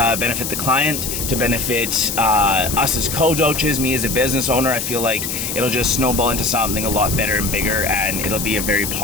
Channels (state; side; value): noise; left; hiss, 4 dB below the sound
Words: benefit the client, to benefit us as coaches, me as a business owner. I feel like it'll just snowball into something a lot better and bigger, and it'll be a very